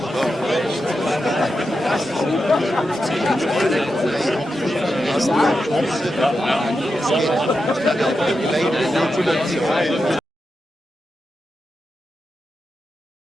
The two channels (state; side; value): normal; both; correlation 0.88